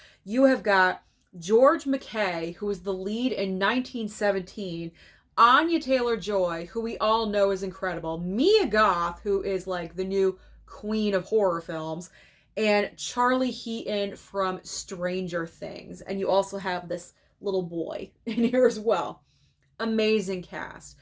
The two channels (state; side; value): identical; both; correlation 1.00